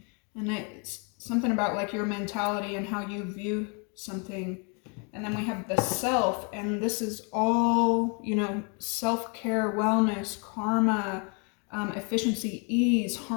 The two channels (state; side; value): quieter; right; 35.7 dB